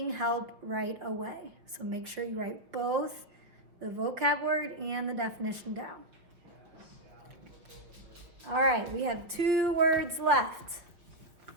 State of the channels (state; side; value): late; left; 5.6 ms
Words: help right away. So make sure you write both the vocab word and the definition down. All right, we have 2 words left.